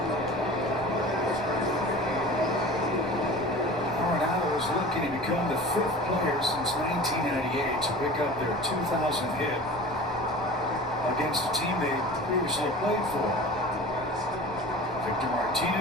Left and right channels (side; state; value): right; noise; rumble, 19 dB below the sound